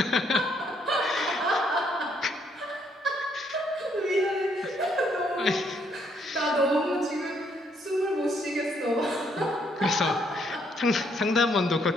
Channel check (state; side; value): normal; both; correlation 0.71